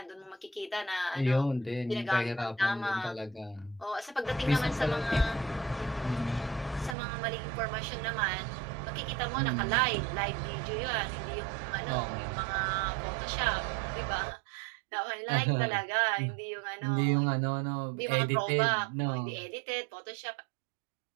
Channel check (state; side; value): drops out; left; at 7.0 s